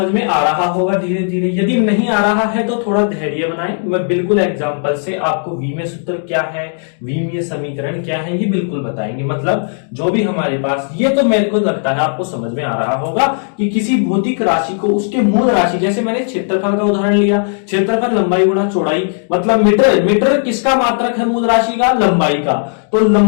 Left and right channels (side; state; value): right; silent; 62 dB below the other